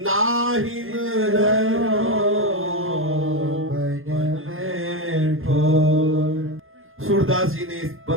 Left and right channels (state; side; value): late; left; 0.60 ms